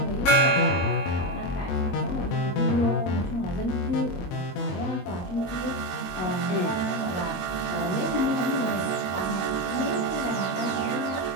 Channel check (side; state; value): right; late; 22 ms